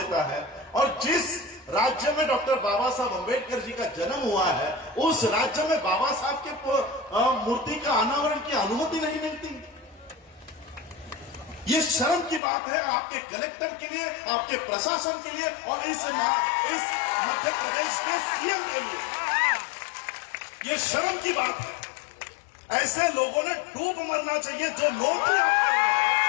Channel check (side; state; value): right; drops out; at 12.4 s